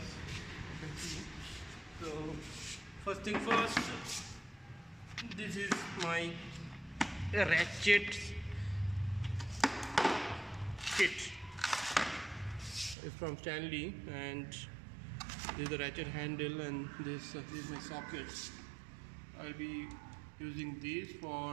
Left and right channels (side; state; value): left; drops out; at 13.0 s